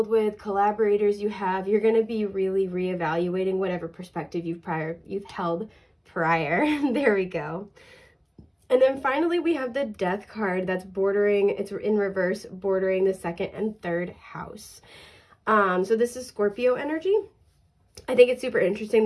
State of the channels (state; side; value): identical; both; correlation 1.00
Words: with, collaborators you have, you're going to be really reevaluating whatever perspective you've held prior. There we go. And then finally, we have the Death card that's bordering, it's in reverse, bordering the 2nd and 3rd house. So this is Scorpio energy. I think it's super interesting